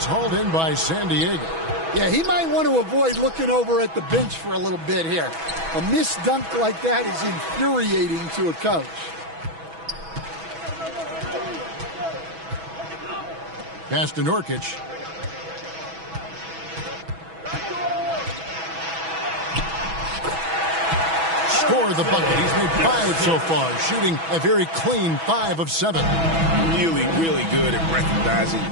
hauled in by San Diego. Yeah, he might want to avoid looking over at the bench for a little bit here. A missed dunk like that is infuriating to a coach. Pass to Nurkic. Score the bucket. He's made 5 so far, shooting a very clean 5 of 7. Really, really good at recognizing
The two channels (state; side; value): late; left; 6.1 ms